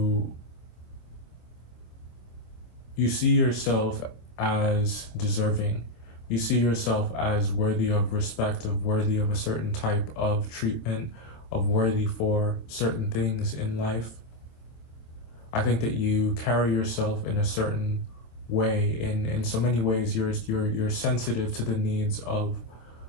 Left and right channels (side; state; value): right; late; 26 ms